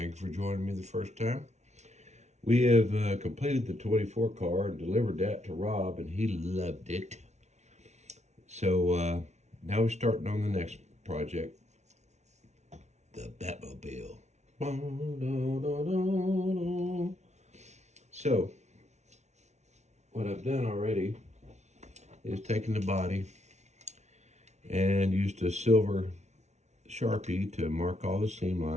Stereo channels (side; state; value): left; late; 0.32 ms